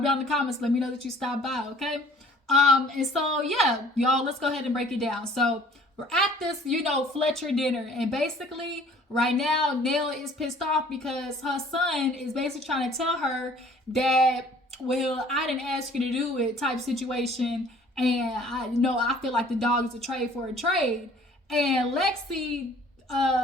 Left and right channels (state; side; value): normal; both; correlation 0.53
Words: down in the comments. Let me know that you stopped by, okay? And so, yeah, y'all, let's go ahead and break it down. So, we're at this, you know, Fletcher dinner. And basically, right now, Nell is pissed off because her son is basically trying to tell her that, well, I didn't ask you to do it type situation. And I feel like the dog is a trade for a trade. And Lexi,